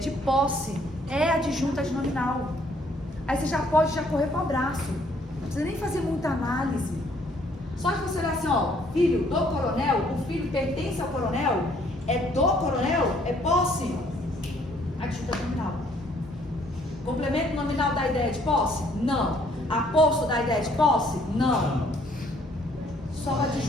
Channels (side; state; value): both; normal; correlation 0.64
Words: posse, é adjunto adnominal. Aí você já pode correr para o abraço. Não precisa nem fazer muita análise. Só de você olhar assim, ó, filho do coronel, o filho pertence ao coronel, é do coronel, é posse, adjunto adnominal. Complemento nominal da ideia de posse? Não. Aposto da ideia de posse? Não. Só o